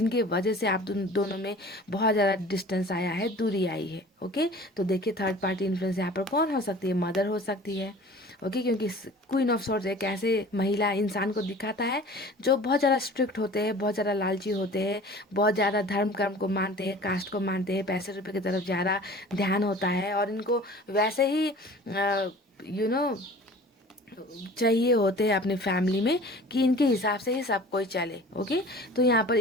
वजह से आप दोनों में बहुत ज़्यादा डिस्टेंस आया है, दूरी आई है। ओके, तो देखिए थर्ड पार्टी इन्फ्लुएंस यहाँ पर कौन हो सकती है, मदर हो सकती है। ओके, क्योंकि क्वीन ऑफ सॉर्ड्स एक ऐसे महिला इंसान को दिखाता है जो बहुत ज़्यादा स्ट्रिक्ट होते हैं, बहुत ज़्यादा लालची होते हैं, बहुत ज़्यादा धर्म कर्म को मानते हैं, कास्ट को मानते हैं, पैसे रुपए की तरफ ज़्यादा ध्यान होता है, और इनको वैसे ही यू नो चाहिए होते हैं अपने फैमिली में कि इनके हिसाब से ही सब कोई चले। ओके, तो यहाँ पर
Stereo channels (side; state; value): both; normal; correlation 0.44